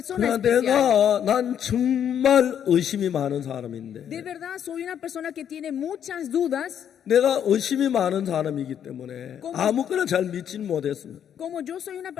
그러나 especial. 난 정말 의심이 많은 사람인데 De verdad, soy una persona que tiene muchas dudas. 내가 의심이 많은 사람이기 때문에 ¿Cómo? 아무거나 잘 믿지는 못했습니다. Como yo soy una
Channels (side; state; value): right; quieter; 9.1 dB